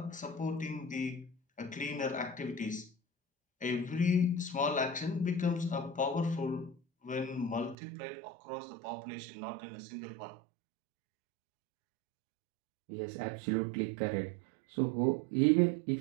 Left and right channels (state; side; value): drops out; left; at 7.8 s